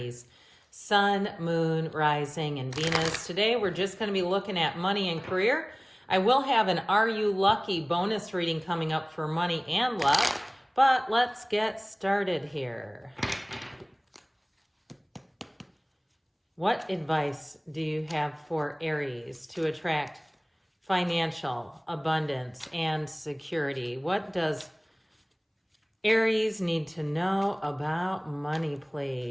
Sun, Moon, Rising, and Venus. Today we're just going to be looking at money and career. I will have an Are You Lucky bonus reading coming up for money and luck, but let's get started here. What advice do you have for Aries to attract financial abundance and security? What does Aries need to know about money,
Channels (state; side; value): identical; both; correlation 1.00